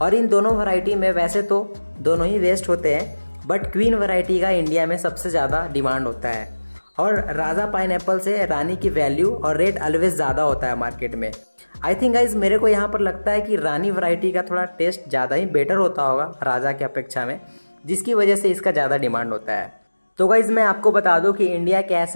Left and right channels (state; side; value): inverted; both; correlation -1.00